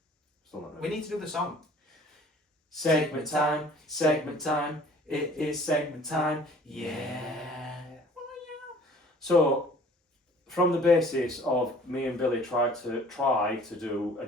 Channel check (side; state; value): both; normal; correlation 0.51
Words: Still not ready. We need to do the song. Segment time, it is segment time, yeah. So, from the basis of me and Billy try to do a